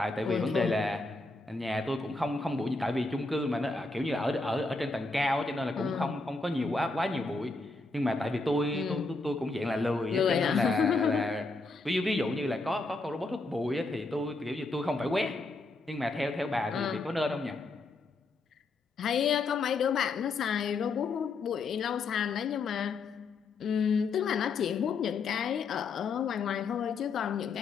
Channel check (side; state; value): right; quieter; 3.6 dB